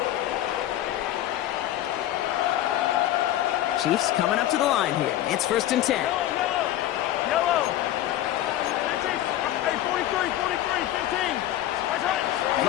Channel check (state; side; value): quieter; right; 13.3 dB